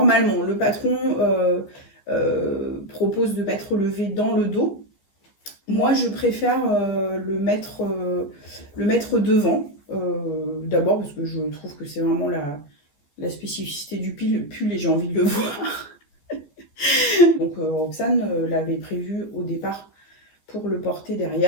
le patron propose de mettre le V dans le dos. Moi, je préfère le mettre devant. D'abord, parce que je trouve que c'est vraiment la spécificité du pull et j'ai envie de le voir. Donc, Roxane l'avait prévu au départ pour le porter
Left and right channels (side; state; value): right; late; 14 ms